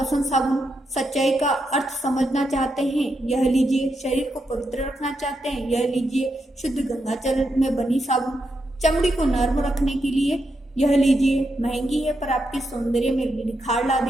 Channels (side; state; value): both; normal; correlation 0.83